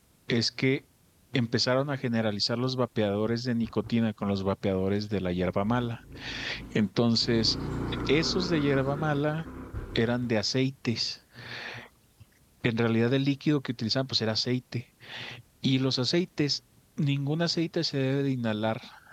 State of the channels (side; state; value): both; identical; correlation 1.00